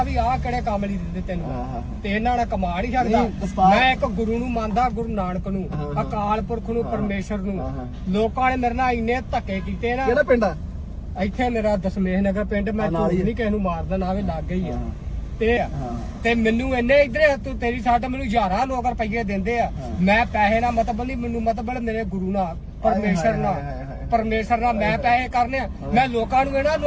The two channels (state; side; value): identical; both; correlation 1.00